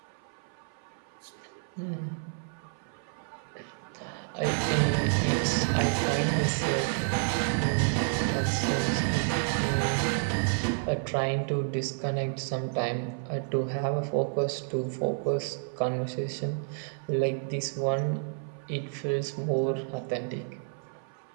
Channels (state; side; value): silent; left; 58 dB below the other